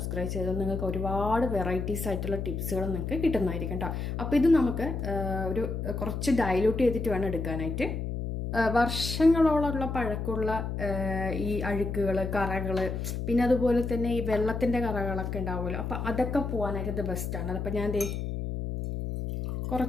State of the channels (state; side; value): noise; left; hum, 3 dB below the sound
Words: ചെയ്താൽ നിങ്ങൾക്ക് ഒരുപാട് വെറൈറ്റീസ് ആയിട്ടുള്ള ടിപ്സുകൾ നിങ്ങൾക്ക് കിട്ടുന്നതായിരിക്കും കേട്ടോ. അപ്പോൾ ഇത് നമുക്ക് ഒരു കുറച്ച് ഡൈല്യൂട്ട് ചെയ്തിട്ട് വേണം എടുക്കാനായിട്ട്. വർഷങ്ങളോളമുള്ള പഴക്കമുള്ള ഈ അഴുക്കുകൾ, കറകൾ, പിന്നെ അതുപോലെ തന്നെ ഈ വെള്ളത്തിൻ്റെ കറകളൊക്കെ ഉണ്ടാവുമല്ലോ, അപ്പോൾ അതൊക്കെ പോകാനായിട്ട് ഇത് ബെസ്റ്റാണ്. അപ്പോൾ ഞാൻ